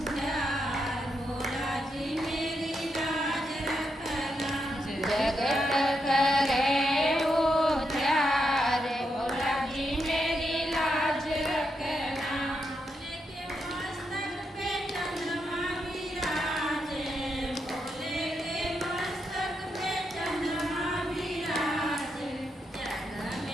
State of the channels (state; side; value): normal; both; correlation 0.82